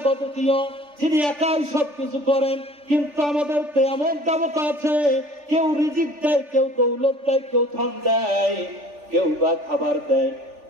অদ্বিতীয়, যিনি একাই সবকিছু করেন। কিন্তু আমাদের তো এমন দেবতা আছে, কেউ রিজিক দেয়, কেউ দৌলত দেয়, কেউ ধন দেয়, কেউ বা খাবার দেয়।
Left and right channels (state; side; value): late; left; 3.4 ms